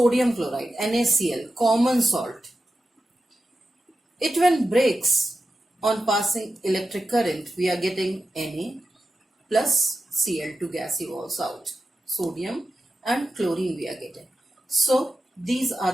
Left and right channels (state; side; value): normal; both; correlation 0.91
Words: chloride, NaCl, common salt. It when breaks on passing electric current, we are getting Na plus Cl2 gas evolves out. Sodium and chlorine we are getting. So these are